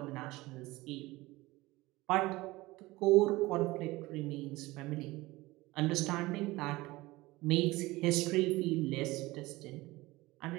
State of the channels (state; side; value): quieter; left; 20.0 dB